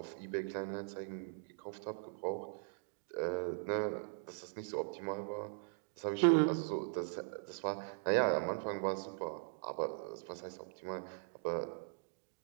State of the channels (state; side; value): silent; left; digital silence